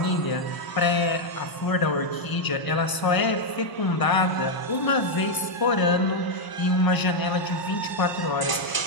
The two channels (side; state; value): right; late; 1.0 ms